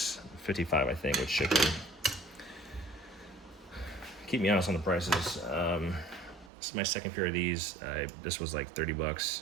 55 I think with shipping. Keep me honest on the prices. This is my second pair of these. This was like 30 bucks.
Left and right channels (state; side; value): drops out; left; at 6.5 s